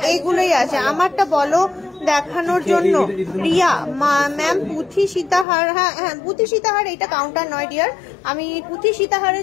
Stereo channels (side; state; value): right; drops out; at 5.5 s